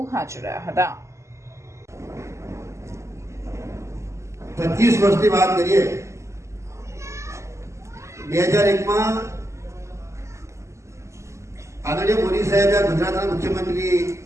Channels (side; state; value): left; late; 0.14 ms